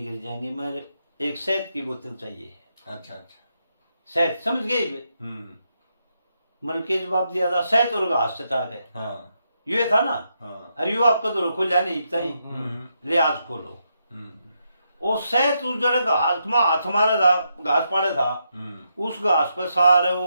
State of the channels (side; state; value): both; inverted; correlation -0.81